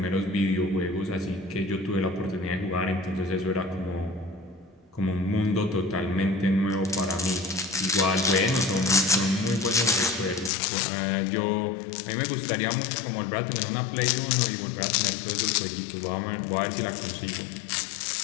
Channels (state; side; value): drops out; right; at 10.5 s